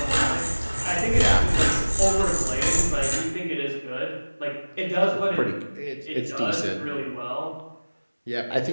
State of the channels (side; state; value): both; inverted; correlation -1.00